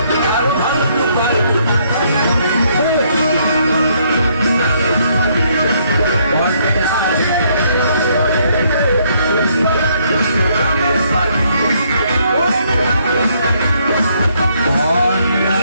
আরো ভালো লুকাই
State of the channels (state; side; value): inverted; both; correlation -0.69